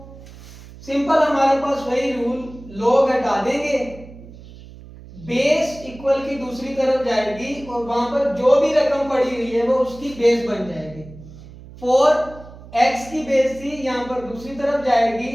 सिंपल हमारे पास वही रूल, log हटा देंगे, बेस इक्वल की दूसरी तरफ जाएगी और वहां पर जो भी रकम पड़ी हुई है वो उसकी बेस बन जाएगी। 4 x की बेस थी, यहां पर दूसरी तरफ जाएगी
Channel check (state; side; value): noise; right; hum, 18 dB below the sound